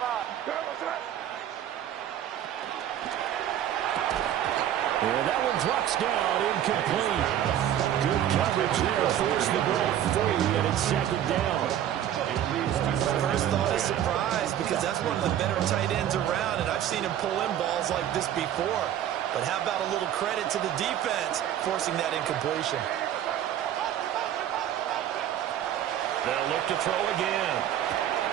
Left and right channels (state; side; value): quieter; left; 11.0 dB